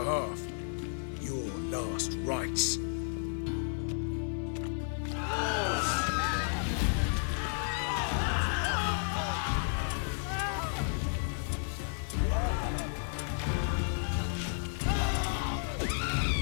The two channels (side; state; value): right; silent; 56 dB below the other